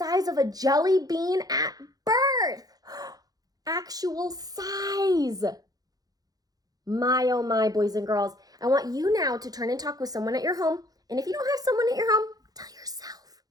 of a jelly bean at birth. Actual size. My, oh my, boys and girls. I want you now to turn and talk with someone at your home. And if you don't have someone at your home, tell yourself.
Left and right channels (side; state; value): left; late; 0.18 ms